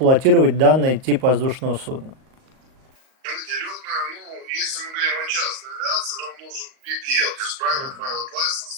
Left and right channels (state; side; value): late; left; 38 ms